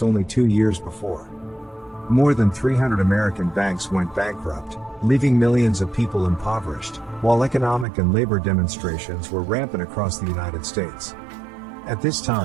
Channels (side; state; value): left; drops out; at 7.9 s